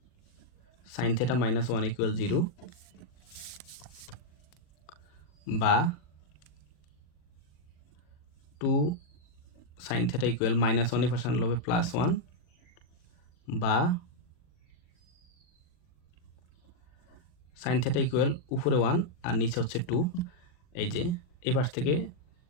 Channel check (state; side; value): late; right; 40 ms